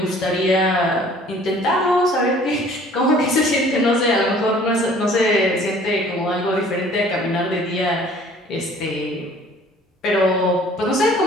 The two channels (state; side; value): normal; both; correlation 0.53